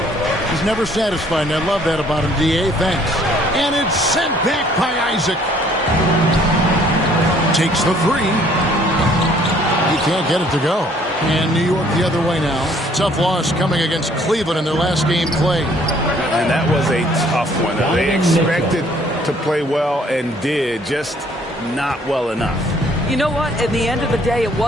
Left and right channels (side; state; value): both; normal; correlation 0.60